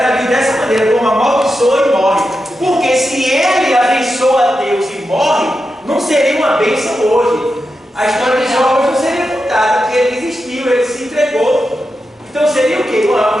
dessa maneira, como amaldiçoa e morre. Porque se ele abençoa Deus e morre, não seria uma bênção hoje. A história de Jó hoje não seria contada, porque ele desistiu, ele se entregou. Então seria o quê?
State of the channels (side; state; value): both; normal; correlation 0.89